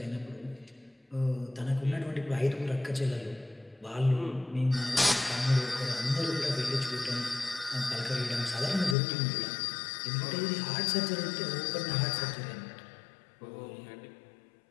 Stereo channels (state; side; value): drops out; right; at 9.0 s